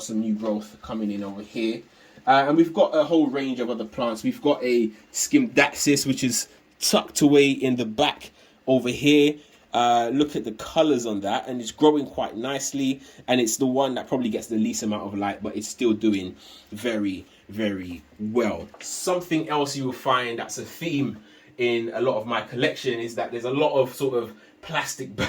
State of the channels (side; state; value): both; identical; correlation 1.00